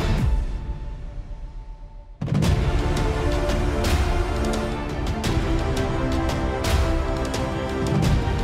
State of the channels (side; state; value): both; identical; correlation 1.00